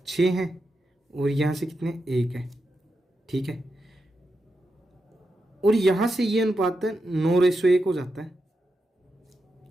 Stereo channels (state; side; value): normal; both; correlation 0.87